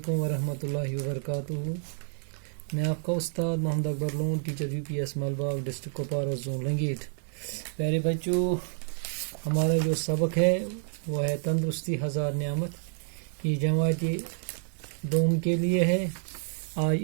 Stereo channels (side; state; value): left; silent; 59 dB below the other